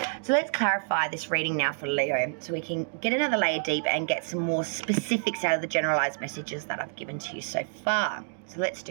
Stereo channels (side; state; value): left; silent; digital silence